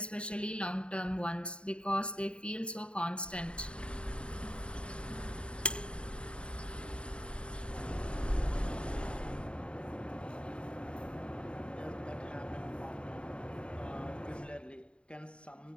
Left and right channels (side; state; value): right; late; 0.055 ms